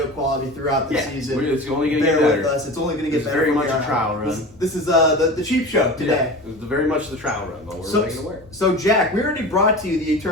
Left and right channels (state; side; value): normal; both; correlation 0.33